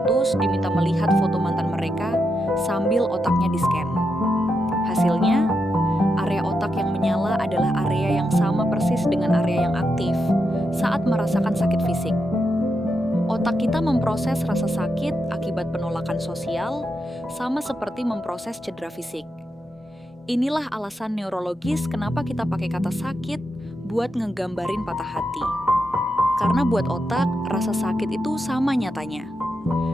diminta melihat foto mantan mereka sambil otaknya di-scan. Hasilnya, area otak yang menyala adalah area yang sama persis dengan area yang aktif saat merasakan sakit fisik. Otak kita memproses rasa sakit akibat penolakan sosial sama seperti memproses cedera fisik. Inilah alasan neurologis kenapa kita pakai kata sakit buat ngegambarin patah hati. Karena buat otak, rasa sakit itu sama nyatanya.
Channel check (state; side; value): normal; both; correlation 0.85